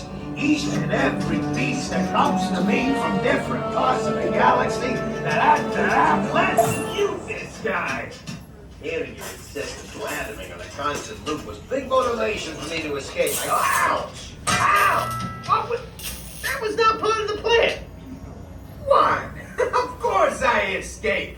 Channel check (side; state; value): both; identical; correlation 1.00